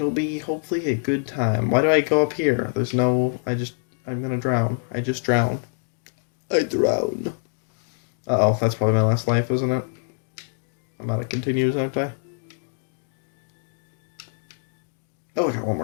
be hopefully a good time. Why do I go up here? There's no. I'm gonna drown. I just drown. I drown. Uh-oh, that's probably my last life, isn't it? I'm out of continues, aren't I? Oh, I got one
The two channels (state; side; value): silent; right; digital silence